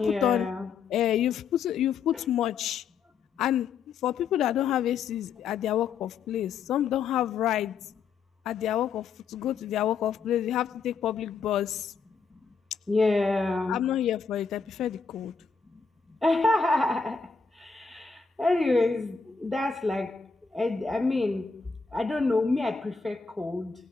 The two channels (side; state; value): right; quieter; 5.5 dB